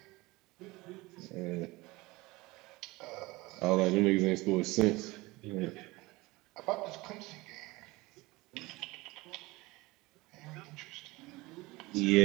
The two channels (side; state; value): left; quieter; 21.7 dB